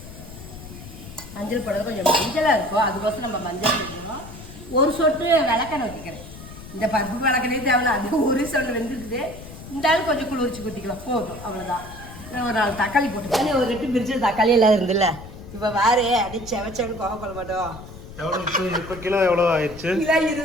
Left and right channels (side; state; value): left; noise; rumble, 15 dB below the sound